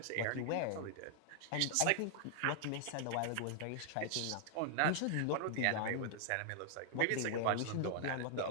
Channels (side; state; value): both; different; correlation -0.01